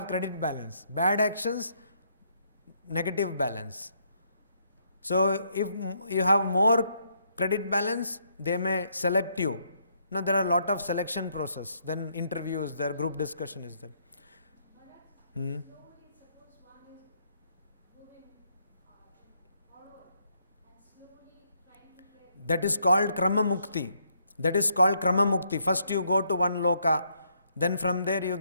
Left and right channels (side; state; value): both; inverted; correlation -0.73